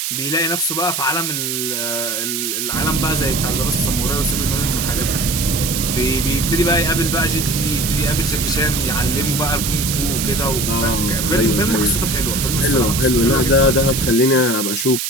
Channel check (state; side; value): noise; right; hiss, 2 dB below the sound